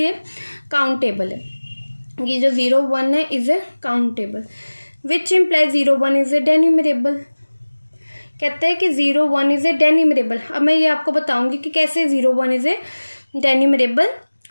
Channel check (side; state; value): both; inverted; correlation -1.00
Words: काउंटेबल है, कि जो 0 1 है is a countable, which implies 0 1 is a denumerable. कहते हैं कि 0 1 इज ए डेन्यूमरेबल। अब मैं ये आपको बताऊंगी कि कैसे 0 1 इज ए डेन्यूमरेबल